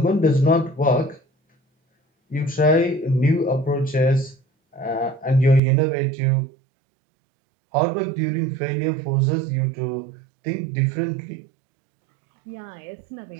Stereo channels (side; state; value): left; drops out; at 5.6 s